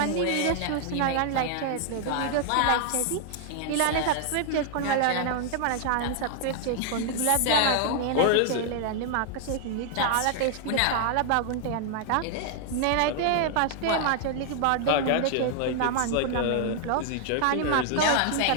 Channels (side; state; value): both; different; correlation 0.00